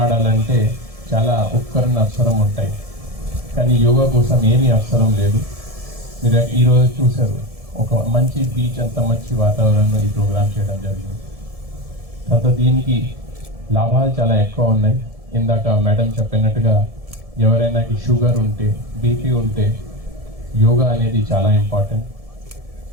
ఆడాలంటే చాలా ఉపకరణ అవసరం ఉంటాయి, కానీ యోగా కోసం ఏమీ అవసరం లేదు. మీరు ఈరోజు చూశారు, ఒక మంచి బీచ్, అంత మంచి వాతావరణంలో ఈ ప్రోగ్రామ్ చేయడం జరిగింది. తర్వాత దీనికి లాభాలు చాలా ఎక్కువ ఉన్నాయి. ఇందాక మేడం చెప్పినట్టుగా ఎవరైనా షుగర్ ఉంటే, బీపీ ఉంటే యోగా అనేది చాలా ఇంపార్టెంట్.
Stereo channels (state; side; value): late; left; 1.7 ms